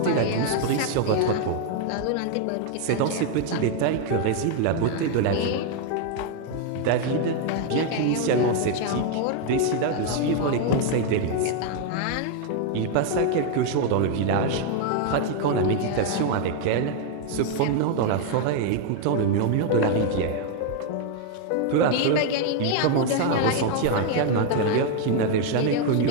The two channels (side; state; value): both; different; correlation 0.01